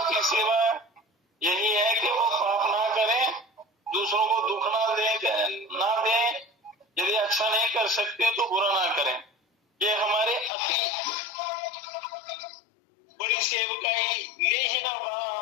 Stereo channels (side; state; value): right; drops out; at 10.5 s